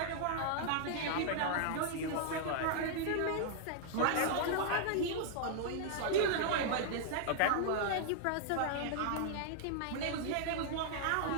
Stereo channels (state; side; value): different; both; correlation -0.01